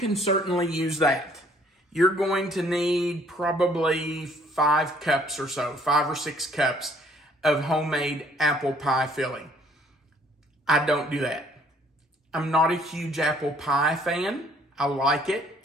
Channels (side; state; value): both; normal; correlation 0.61